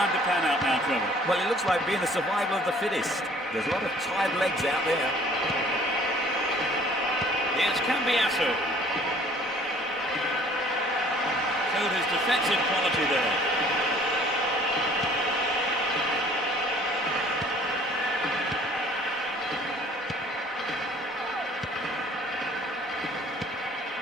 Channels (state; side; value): normal; both; correlation 0.55